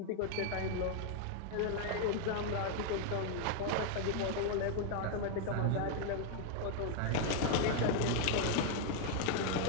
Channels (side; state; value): both; different; correlation 0.00